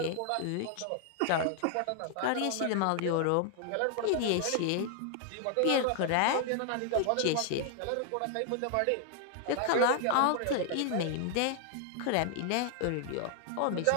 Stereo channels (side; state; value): both; different; correlation 0.00